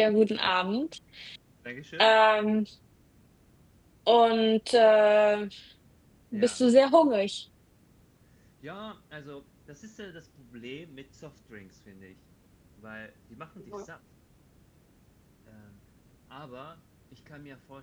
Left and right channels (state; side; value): identical; both; correlation 1.00